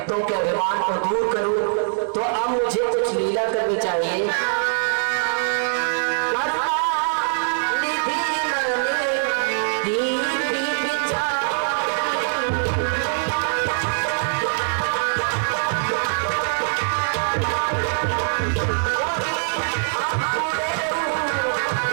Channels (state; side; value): silent; left; 64 dB below the other